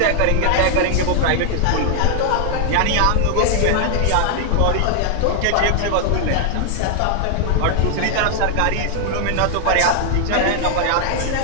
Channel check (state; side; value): different; both; correlation 0.00